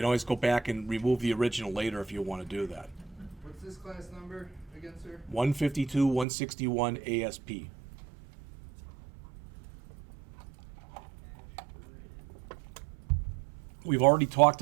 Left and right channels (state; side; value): drops out; left; at 6.2 s